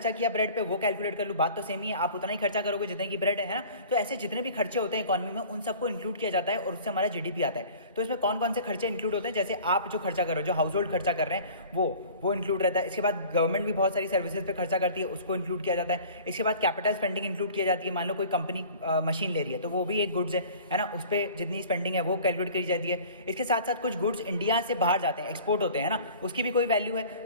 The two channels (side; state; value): both; inverted; correlation -0.45